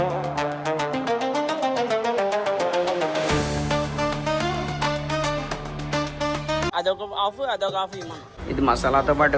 అదొక ఆఫ్ ఇవ్వమను. ఇది మసాలాతో పాటు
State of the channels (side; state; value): both; identical; correlation 1.00